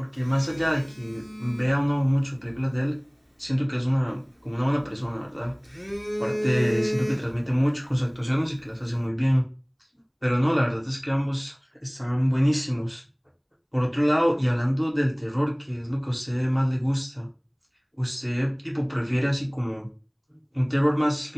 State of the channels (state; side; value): identical; both; correlation 1.00